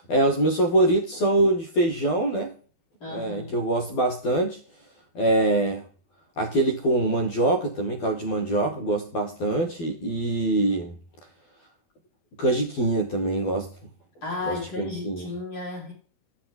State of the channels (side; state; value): right; late; 12 ms